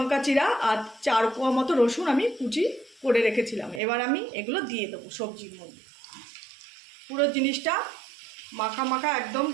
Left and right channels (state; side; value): drops out; left; at 3.8 s